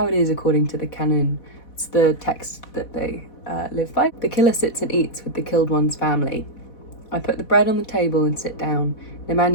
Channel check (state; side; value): late; right; 4.1 ms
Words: it is according to the canon. It's the text that they live by. The killer sits and eats with the killed one's family. I put the bread on the table and sit down.